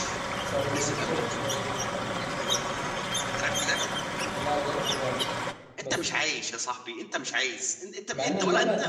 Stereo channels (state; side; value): identical; both; correlation 1.00